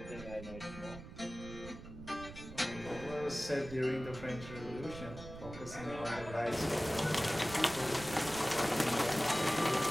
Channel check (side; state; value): right; noise; rumble, 13 dB below the sound